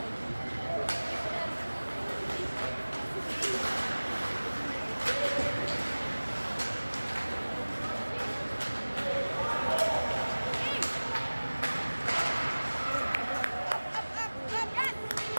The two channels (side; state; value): both; inverted; correlation -1.00